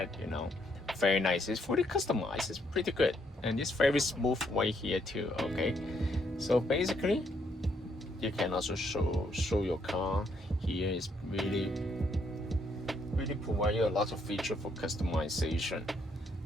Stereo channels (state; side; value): normal; both; correlation 0.73